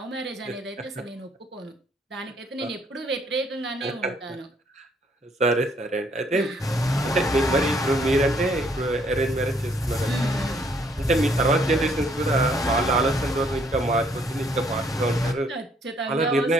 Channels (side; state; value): both; normal; correlation 0.67